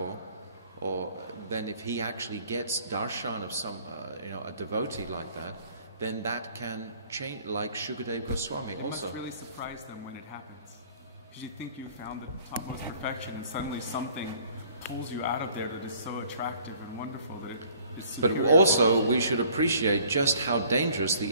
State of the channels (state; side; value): inverted; both; correlation -0.56